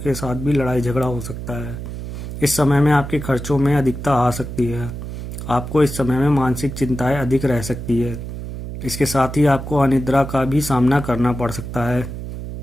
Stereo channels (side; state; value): right; noise; hum, 8 dB below the sound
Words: साथ भी लड़ाई झगड़ा हो सकता है। इस समय में आपके खर्चों में अधिकता आ सकती है। आपको इस समय में मानसिक चिंताएं अधिक रह सकती है। इसके साथ ही आपको अनिद्रा का भी सामना करना पड़ सकता है।